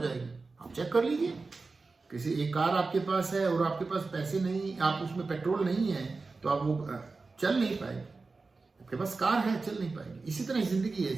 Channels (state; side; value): quieter; left; 3.9 dB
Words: आप चेक कर लीजिए, किसी एक कार आपके पास है और आपके पास पैसे नहीं, आप उसमें पेट्रोल नहीं है, तो आप वो चल नहीं पाएगी। आपके पास कार है, चल नहीं पाएगी। इसी तरह जिंदगी है।